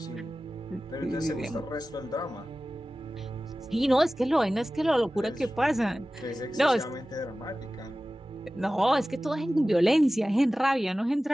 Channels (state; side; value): normal; both; correlation 0.96